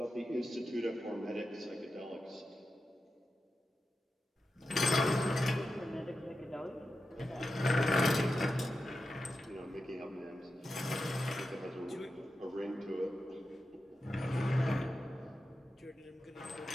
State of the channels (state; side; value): normal; both; correlation 0.90